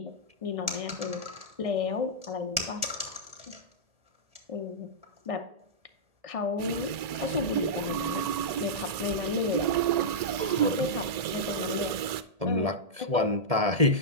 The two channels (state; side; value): late; left; 1.9 ms